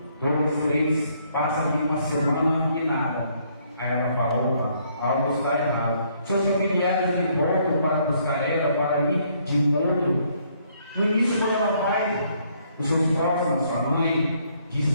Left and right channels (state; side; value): inverted; both; correlation -0.68